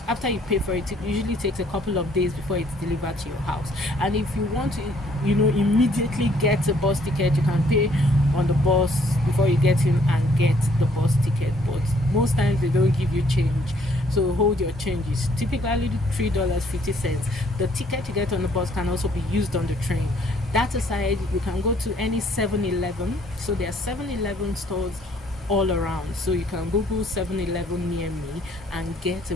after you pay for it, it usually takes a couple of days before it's delivered to your house. And if you want to immediately get a bus ticket, you can pay on the bus before you get in and get the bus ticket. But most times they don't give you change, so hold your changes. Typically $3.50. The ticket you get on the bus can also be used on the train. That aside, you can go to any 7-Eleven. So there are 7-Eleven stores all around, so you can Google 7-Eleven near me and get a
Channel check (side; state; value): both; normal; correlation 0.64